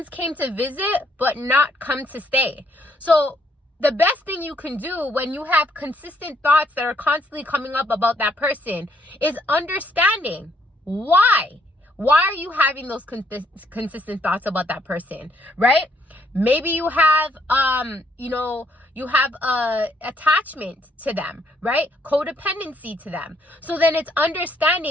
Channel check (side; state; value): both; normal; correlation 0.70